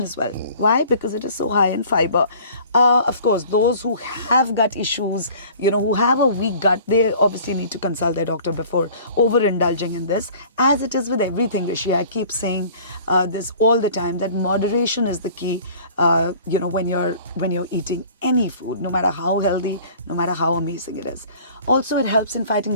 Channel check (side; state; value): both; inverted; correlation -0.48